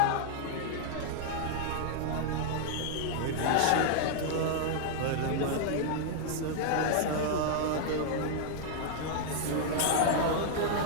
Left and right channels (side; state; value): both; different; correlation -0.01